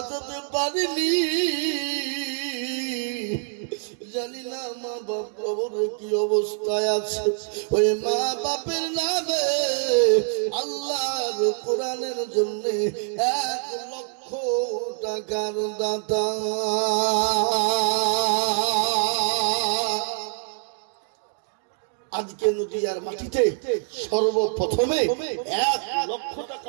পারিনি। জানি না মা বাপ কবরে কি অবস্থায় আছে। ওই মা বাপের নামে আল্লাহর কোরআনের জন্য 1 লক্ষ টাকার দাতা আজকে নদিয়ার মাটিতে সর্বপ্রথমে 1 লক্ষ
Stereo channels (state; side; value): silent; left; digital silence